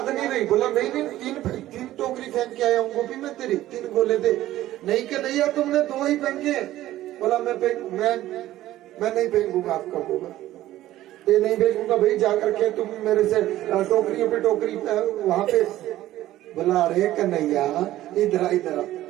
नहीं रही। बोला नहीं तीन टोकरी फेंक के आया हूँ गोपी मैं तेरी, 3 गोले दे। नहीं कन्हैया तुमने 2 ही फेंके। बोला मैं नहीं फेंकूंगा आपका गोबर, ये नहीं फेंकूंगा भाई, जाकर के तुम मेरे से टोकरियों पे टोकरी वहां पे। बोला अरे कन्हैया इधर।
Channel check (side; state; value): left; quieter; 14.6 dB